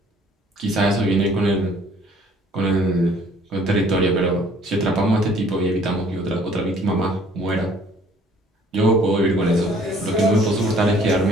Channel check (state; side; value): normal; both; correlation 0.57